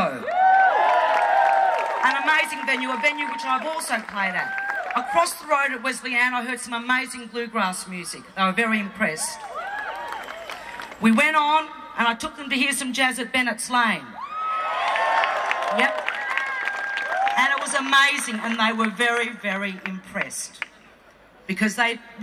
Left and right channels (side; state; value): both; identical; correlation 1.00